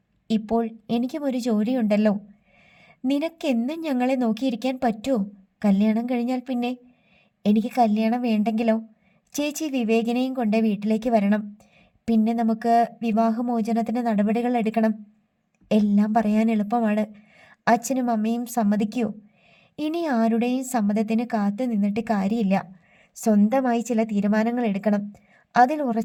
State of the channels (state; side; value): identical; both; correlation 1.00